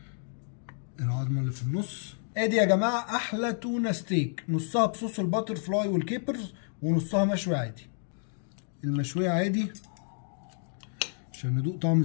العظمه اللي في النص. ادي يا جماعه احلى تونه ستيك، نصها بصوص الباتر فلاي والكيبرز ونصها مشوي عادي. المشويه عادي عشان ندوق طعم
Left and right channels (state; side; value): silent; right; digital silence